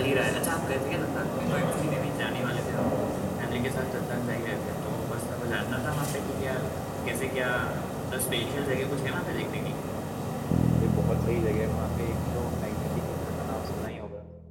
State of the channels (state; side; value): identical; both; correlation 1.00